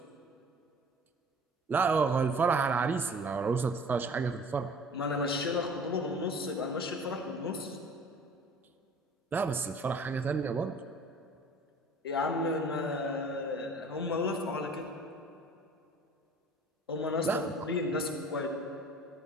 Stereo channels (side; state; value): both; normal; correlation 0.47